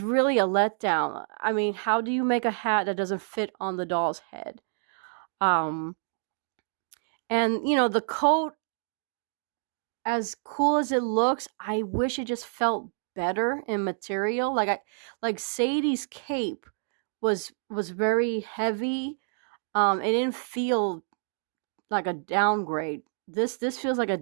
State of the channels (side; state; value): left; silent; digital silence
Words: really a letdown. I mean, how do you make a hat that doesn't fit on the doll's head? Um, and the coat, as cool as it looks, I wish it just felt better in material. Like Sadie's cape was very heavy. It didn't feel like a downgrade. This feels like a